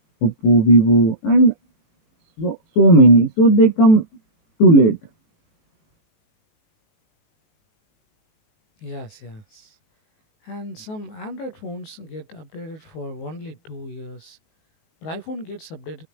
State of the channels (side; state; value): right; late; 19 ms